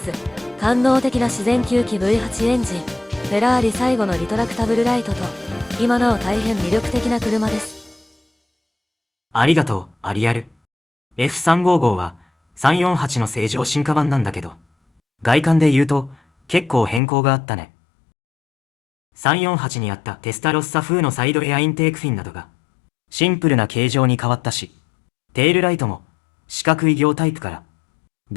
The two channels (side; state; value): right; drops out; at 17.0 s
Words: 官能的な自然吸気 V8 エンジン、フェラーリ最後のリトラクタブルライトと、今なお大変魅力的な車です。ありがとう、アリアル。F355 は348の正常進化版なんだけど、外観で言うと結構変更があったね。348にあったテスタロッサ風のサイドエアインテークフィンなどがシンプルな形状に変わったし、テールライトも四角い形タイプから